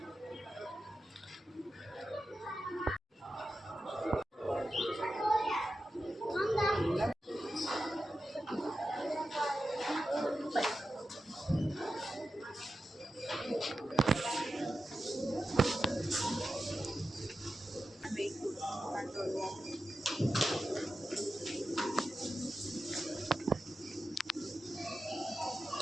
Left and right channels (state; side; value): normal; both; correlation 0.91